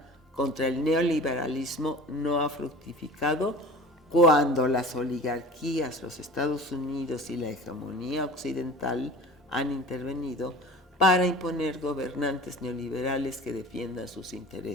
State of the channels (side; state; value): both; normal; correlation 0.39